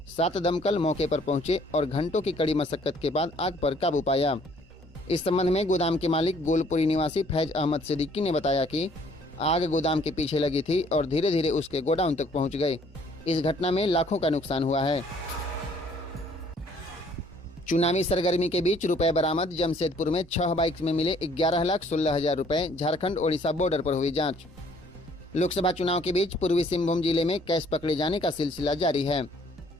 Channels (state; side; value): normal; both; correlation 0.61